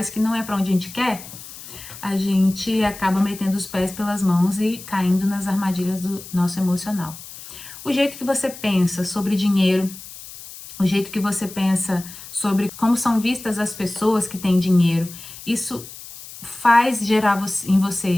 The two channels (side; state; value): left; noise; hiss, 15 dB below the sound